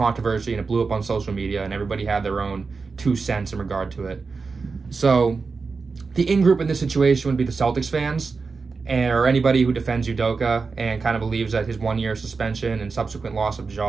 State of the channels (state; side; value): quieter; left; 4.6 dB